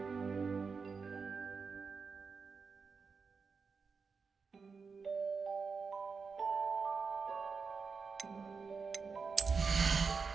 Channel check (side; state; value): left; quieter; 5.1 dB